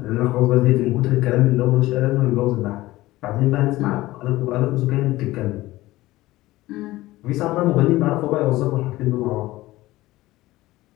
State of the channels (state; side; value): quieter; right; 17.7 dB